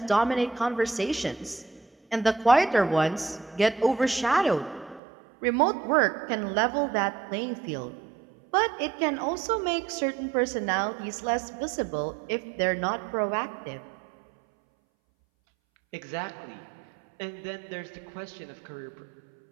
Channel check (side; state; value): left; drops out; at 5.0 s